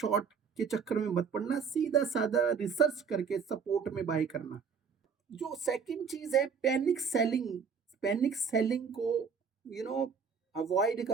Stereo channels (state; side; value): quieter; left; 6.1 dB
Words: के चक्कर में मत पड़ना, सीधा साधा रिसर्च करके सपोर्ट में बाय करना। जो सेकंड चीज है पैनिक सेलिंग, पैनिक सेलिंग को अवॉइड